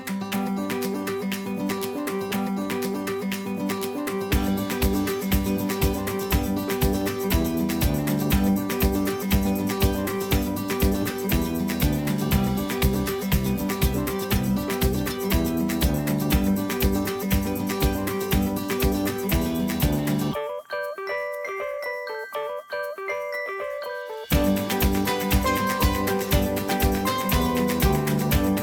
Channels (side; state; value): both; identical; correlation 1.00